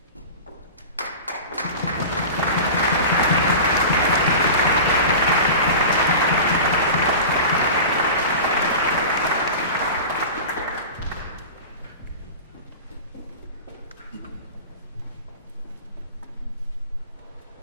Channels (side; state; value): both; inverted; correlation -0.32